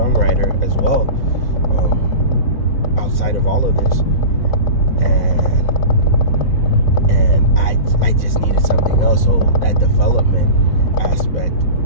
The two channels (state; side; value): late; right; 4.0 ms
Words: as well, outside of all of this. And I just needed something else. So that development aspect